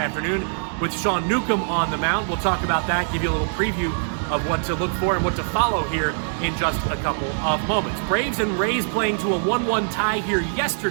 with Sean Newcomb on the mound. We'll talk about that, give you a little preview of what to look for and what to follow here in just a couple of moments. Braves and Rays playing to a 1-1 tie here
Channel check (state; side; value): silent; left; digital silence